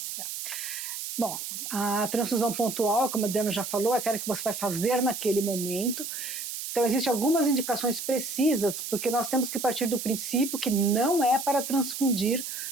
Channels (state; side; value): noise; right; hiss, 6 dB below the sound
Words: Bom, a transfusão pontual, como a Diana já falou, é aquela que você vai fazer naquele momento. Então, existem algumas indicações precisas, porque nós temos que partir do princípio que não é para transfundir